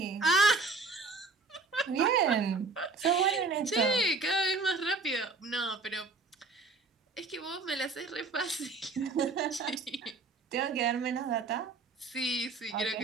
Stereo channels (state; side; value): quieter; left; 3.8 dB